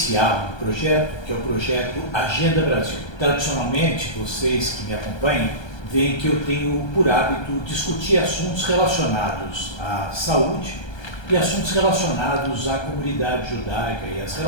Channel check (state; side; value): late; right; 1.3 ms